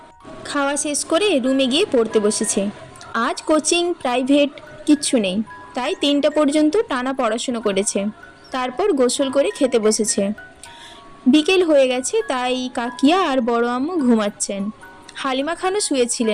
খাওয়া শেষ করে রুমে গিয়ে পড়তে বসেছে। আজ কোচিং প্রাইভেট কিচ্ছু নেই, তাই 3টা পর্যন্ত টানা পড়াশুনো করেছে। তারপর গোসল করে খেতে বসেছে। বিকেল হয়ে গেছে, তাই কাকিয়া আর বড় আম্মু ঘুমাচ্ছেন। হালিমা খানও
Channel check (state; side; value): identical; both; correlation 1.00